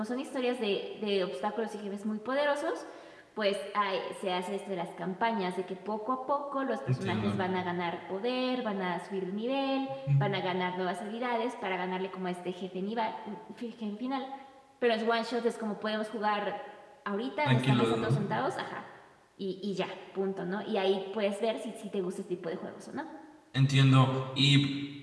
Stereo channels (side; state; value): both; identical; correlation 1.00